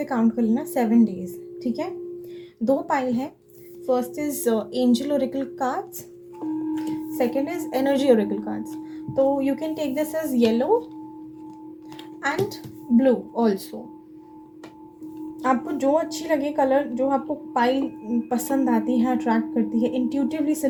काउंट कर लेना 7 डेज़, ठीक है। 2 पाइल है। First is angel oracle cards, second is energy oracle cards. तो you can take this as yellow and blue also. आपको जो अच्छी लगे कलर, जो आपको पाइल पसंद आती है, अट्रैक्ट करती है, इंट्यूटिवली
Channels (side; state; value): both; identical; correlation 1.00